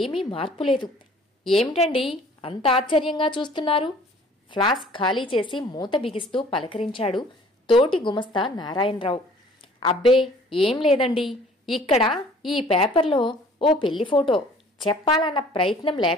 మార్పు లేదు. ఏమిటండి అంత ఆశ్చర్యంగా చూస్తున్నారు? ఫ్లాస్క్ ఖాళీ చేసి మూత బిగిస్తూ పలకరించాడు తోటి గుమస్తా నారాయణరావు. అబ్బే ఏం లేదండి, ఇక్కడ ఈ పేపర్లో ఓ పెళ్లి ఫోటో చెప్పాలన్న ప్రయత్నం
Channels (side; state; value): both; normal; correlation 0.53